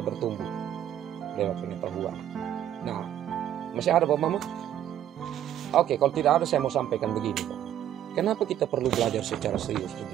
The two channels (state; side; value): quieter; left; 11.1 dB